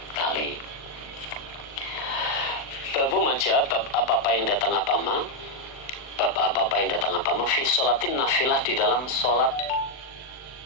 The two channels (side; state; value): right; late; 39 ms